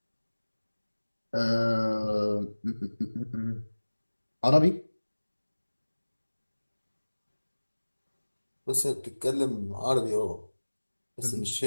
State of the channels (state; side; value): inverted; both; correlation -1.00